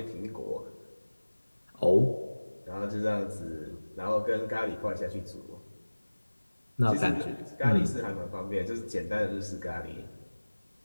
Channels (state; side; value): inverted; both; correlation -1.00